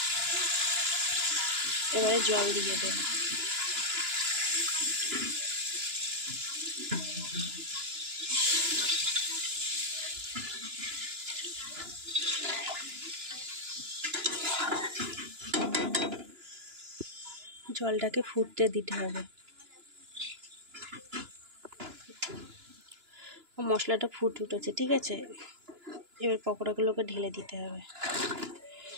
এবারে জল দিয়ে দেব। জলটাকে ফুটতে দিতে হবে। মশলাটা ফুটে উঠেছে, ঠিক আছে। এবার পকোড়াগুলোকে ঢেলে দিতে হবে।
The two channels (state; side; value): late; left; 2.9 ms